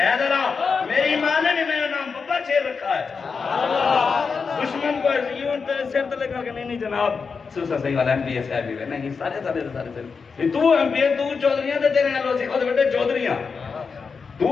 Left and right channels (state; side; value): quieter; right; 5.3 dB